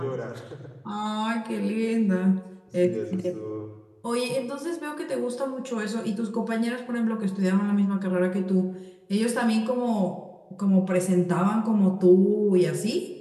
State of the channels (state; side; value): identical; both; correlation 1.00